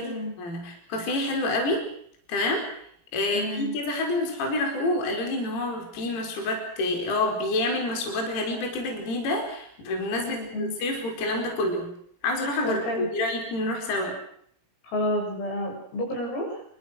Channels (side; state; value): right; late; 18 ms